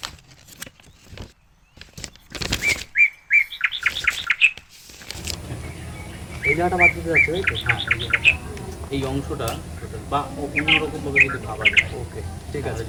এই জায়গাটা বাদ দিতে যাচ্ছে, তাই তো? হ্যাঁ, এই জায়গাটা, এই অংশটা বা অন্যরকম ভাবে যদি ভাবা যায়। ওকে, ঠিক আছে।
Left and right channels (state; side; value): identical; both; correlation 1.00